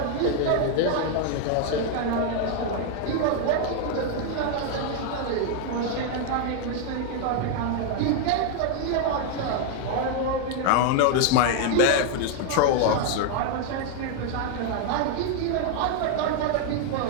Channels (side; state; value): both; different; correlation 0.00